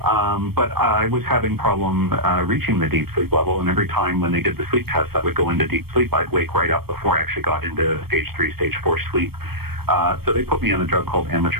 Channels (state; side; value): late; left; 0.96 ms